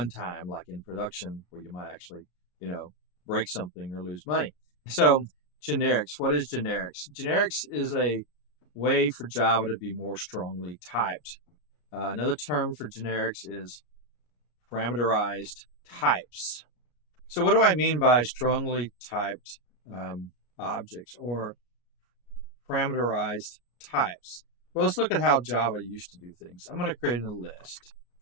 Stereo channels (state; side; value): late; right; 34 ms